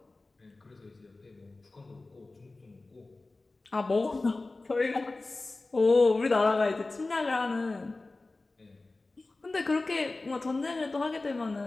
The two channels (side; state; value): right; quieter; 3.2 dB